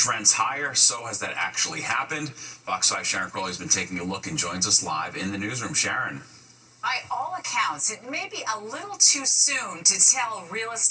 rents higher. So has that actually happened? Fox 5 Sharon Crowley has been taking a look and joins us live in the newsroom. Sharon. By all accounts, it may be a little too soon to tell real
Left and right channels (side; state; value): both; identical; correlation 1.00